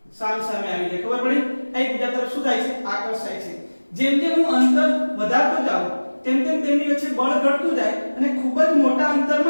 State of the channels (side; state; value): both; inverted; correlation -1.00